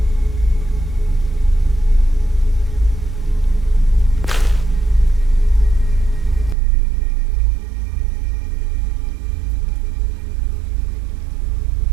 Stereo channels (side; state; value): left; drops out; at 6.6 s